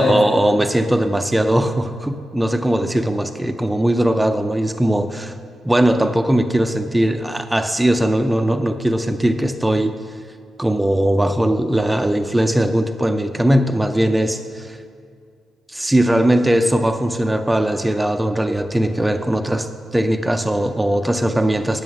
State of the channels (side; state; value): both; normal; correlation 0.95